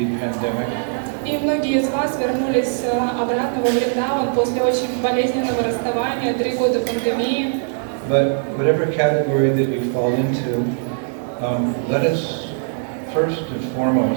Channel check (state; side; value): silent; left; digital silence